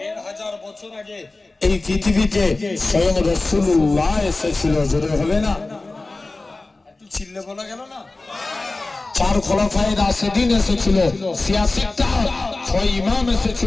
1000 বছর আগে এই পৃথিবীতে স্বয়ং রাসূলুল্লাহ এসেছিল। জোরে হবে না? একটু চিল্লে বলা গেল না? 4 খোলাফায়ে রাশিদিন এসেছিল, 86টা 6 ইমাম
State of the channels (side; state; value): right; quieter; 3.2 dB